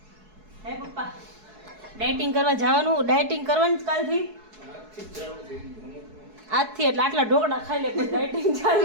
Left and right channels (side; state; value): left; late; 4.7 ms